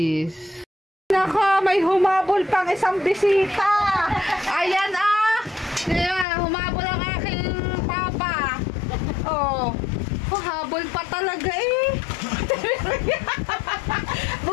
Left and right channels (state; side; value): drops out; right; at 6.2 s